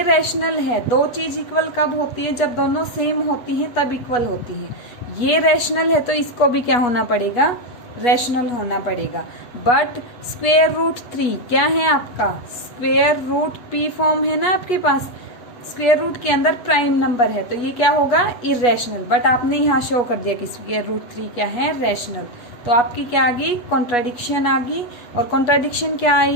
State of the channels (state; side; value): late; right; 8.3 ms